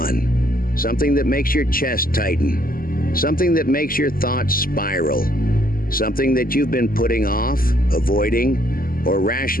Something that makes your chest tighten. Something that makes your thoughts spiral. Something that you've been putting off, avoiding, or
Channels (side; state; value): right; late; 0.42 ms